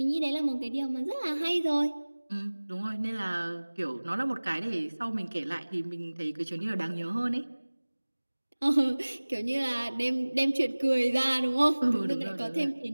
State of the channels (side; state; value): both; inverted; correlation -1.00